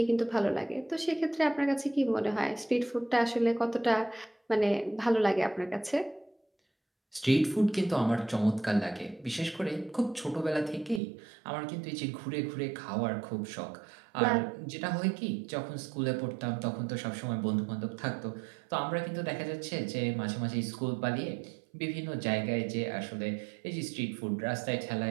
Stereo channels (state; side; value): drops out; left; at 11.0 s